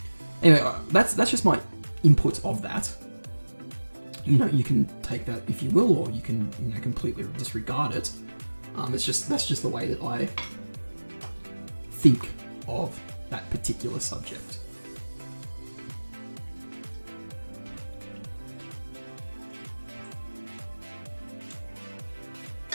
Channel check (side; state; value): both; inverted; correlation -1.00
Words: Anyway, that's just my input of that. You can take that if you will, or you can, completely disregard it. That's just the way that I think of that particular subject.